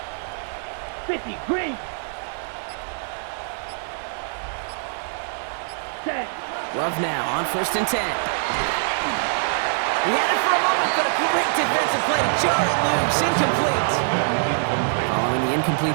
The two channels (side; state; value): left; silent; 63 dB below the other